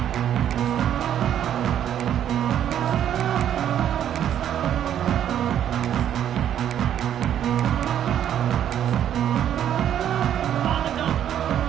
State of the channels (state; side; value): quieter; left; 10.2 dB